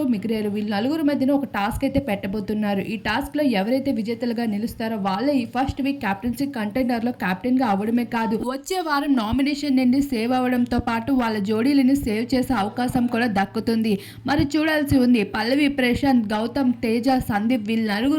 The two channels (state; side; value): identical; both; correlation 1.00